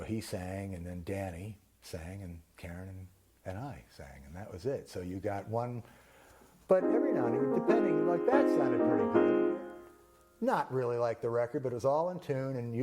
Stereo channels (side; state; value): both; identical; correlation 1.00